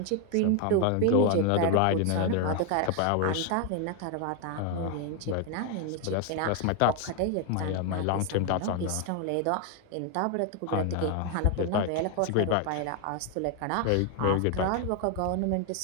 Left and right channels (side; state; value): both; different; correlation 0.01